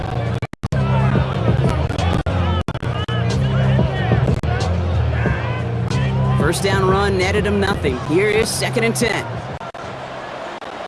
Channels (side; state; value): both; identical; correlation 1.00